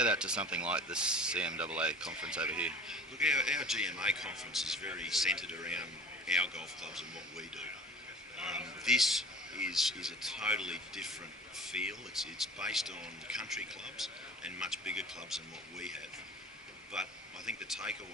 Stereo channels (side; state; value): both; normal; correlation 0.40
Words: that to something like the CMAA conference over here? Look, our GMA conference is very centred around our golf clubs and what we do. This is a totally different feel. It's based on country clubs and much bigger clubs than what we have. But I think the